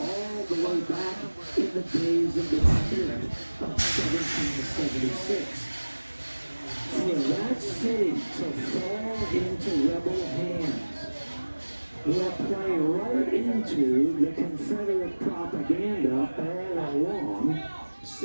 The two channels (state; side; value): inverted; both; correlation -1.00